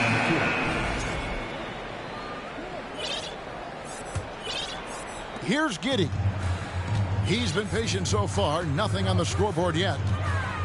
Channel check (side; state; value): both; identical; correlation 1.00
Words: Here's Giddey. He's been patient so far. Nothing on the scoreboard yet.